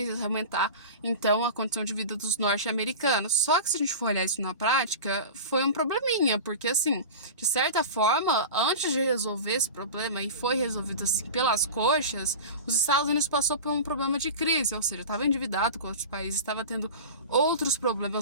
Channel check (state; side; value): inverted; both; correlation -0.31